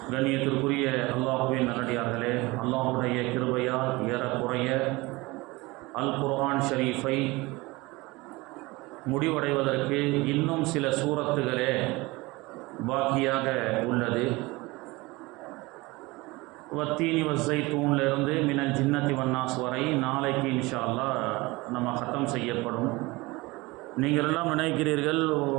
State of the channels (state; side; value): quieter; left; 22.5 dB